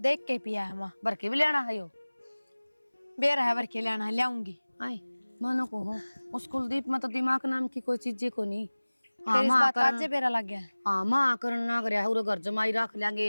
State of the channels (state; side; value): inverted; both; correlation -1.00